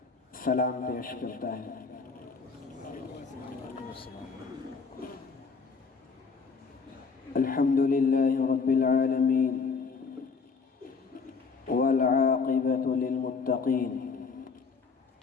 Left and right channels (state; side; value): quieter; right; 5.0 dB